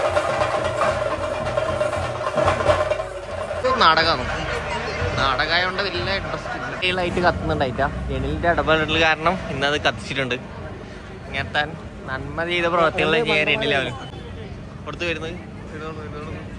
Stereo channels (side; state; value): both; identical; correlation 1.00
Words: നാടകമായോണ്ട് വലിയ ഇൻട്രസ്റ്റ് ആയിട്ട് കത്തുന്നുണ്ടായിട്ടാ. ജനലിന്റെ ഇടപെടൽ കാരണം ഇന്നത് കത്തിച്ചിട്ടുണ്ട്. ഇങ്ങനത്തെ നന്മ ചെയ്ത പ്രവർത്തികളെ ചെയ്യാൻ രണ്ടിലാവരും പുറത്ത് വരുന്നത്.